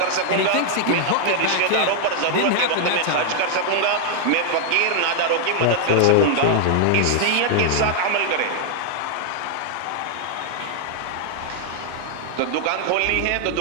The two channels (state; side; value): different; both; correlation 0.00